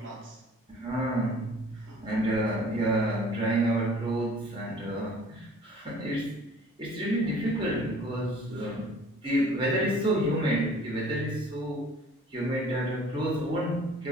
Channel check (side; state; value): both; normal; correlation 0.51